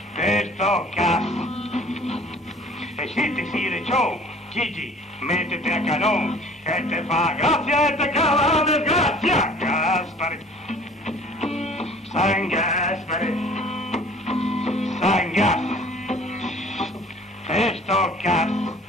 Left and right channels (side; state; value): both; normal; correlation 0.50